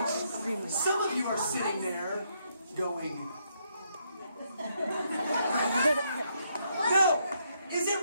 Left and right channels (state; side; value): inverted; both; correlation -0.75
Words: some of you are sitting there going, no, is